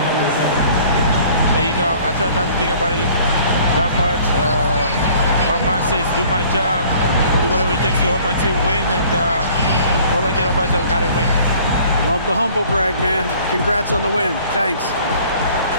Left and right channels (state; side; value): inverted; both; correlation -0.53